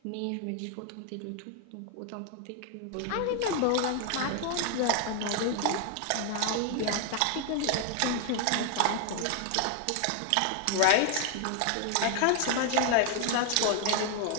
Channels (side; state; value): both; different; correlation 0.00